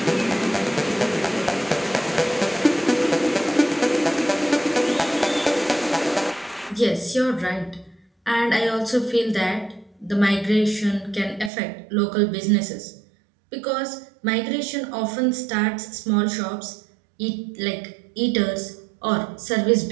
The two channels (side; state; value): left; drops out; at 11.5 s